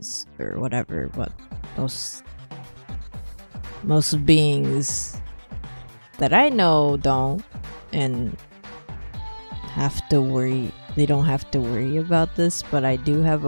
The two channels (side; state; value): both; inverted; correlation -1.00